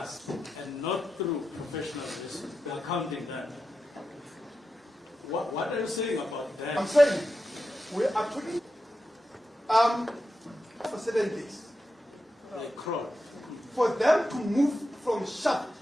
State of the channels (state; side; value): normal; both; correlation 0.89